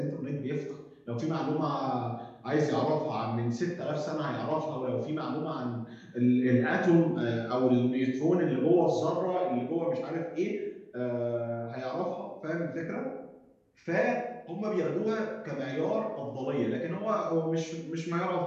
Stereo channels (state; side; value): identical; both; correlation 1.00